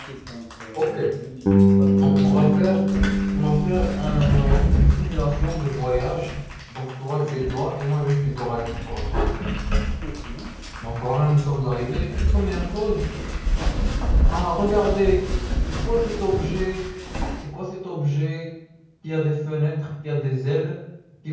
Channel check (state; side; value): identical; both; correlation 1.00